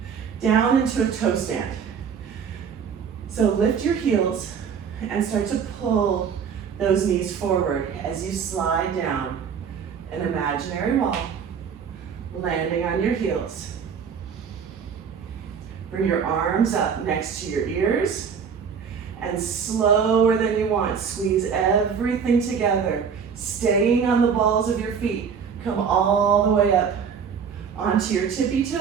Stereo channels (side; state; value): left; quieter; 6.8 dB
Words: down into a toe stand. So lift your heels and start to pull those knees forward as you slide down an imaginary wall, landing on your heels. Bring your arms up next to your ears and slower than you want, squeeze everything together, staying on the balls of your feet. Come all the way up onto your tippy